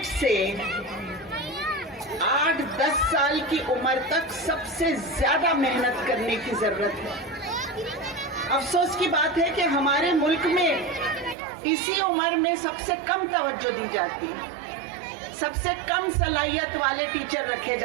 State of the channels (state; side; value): drops out; left; at 11.4 s